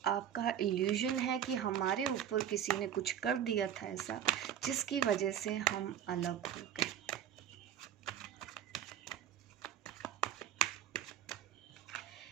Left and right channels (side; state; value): left; quieter; 9.8 dB